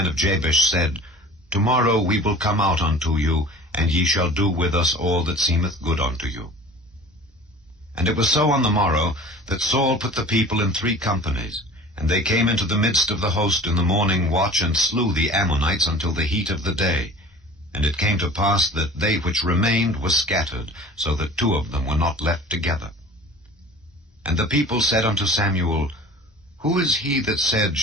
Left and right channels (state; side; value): normal; both; correlation 0.42